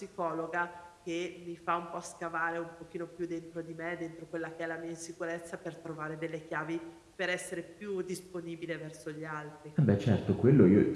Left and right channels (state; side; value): identical; both; correlation 1.00